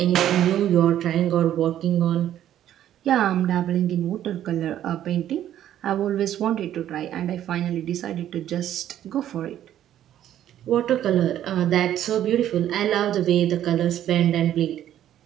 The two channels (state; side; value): quieter; left; 11.5 dB